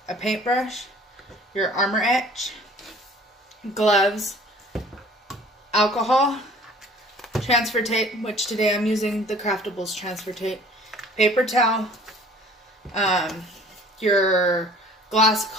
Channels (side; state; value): both; normal; correlation 0.51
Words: a paintbrush, your Armour Etch, gloves, alcohol, transfer tape, which today I'm using the Craftables transfer tape, paper towel, your glass